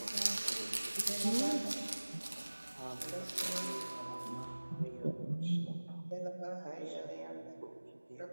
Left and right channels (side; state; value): both; inverted; correlation -1.00